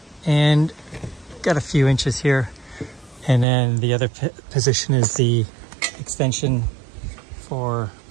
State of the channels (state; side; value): drops out; left; at 3.5 s